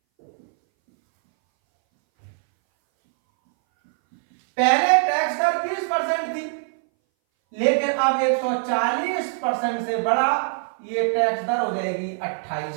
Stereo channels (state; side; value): silent; left; 61 dB below the other